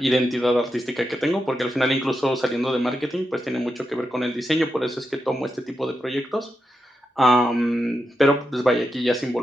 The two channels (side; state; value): both; normal; correlation 0.86